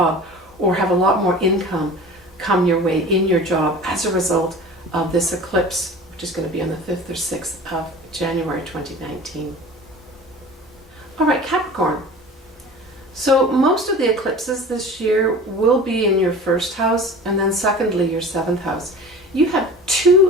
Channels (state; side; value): normal; both; correlation 0.39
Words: or have a lot more income come your way in your job as a result of this eclipse, which is going to be on the 5th or 6th of January 2019. All right, Capricorn. So most of the eclipses this year will be in your 1st house, and then secondly your 7th house. You have